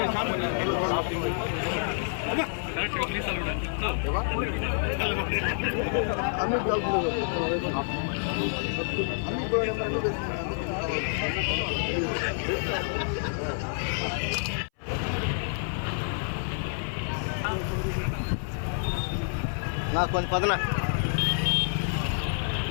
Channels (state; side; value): silent; right; 59 dB below the other